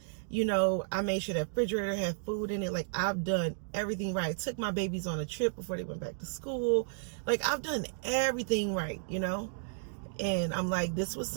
You know, I made sure that refrigerator had food in it. Like, I've done everything right. Took my babies on a trip before they went back to school. Like, I've done everything right, you know? And I'm like, this was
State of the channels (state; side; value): silent; left; digital silence